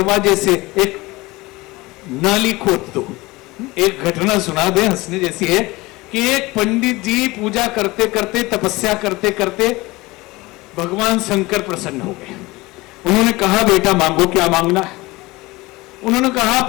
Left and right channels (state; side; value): quieter; right; 21.4 dB